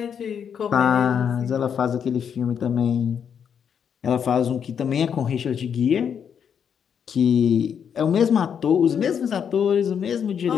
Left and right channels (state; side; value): quieter; right; 7.7 dB